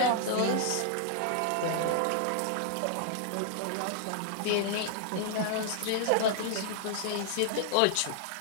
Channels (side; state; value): both; different; correlation -0.01